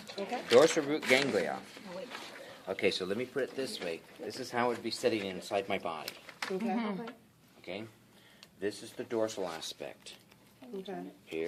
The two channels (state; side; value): identical; both; correlation 1.00